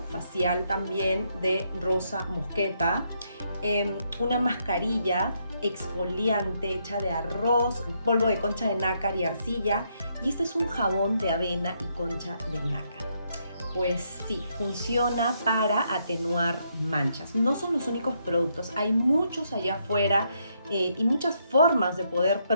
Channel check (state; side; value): inverted; both; correlation -0.76